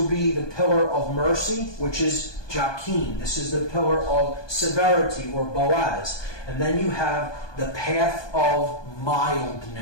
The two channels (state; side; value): late; right; 1.2 ms